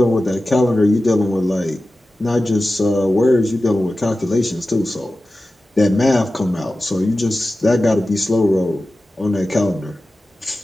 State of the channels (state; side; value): normal; both; correlation 0.94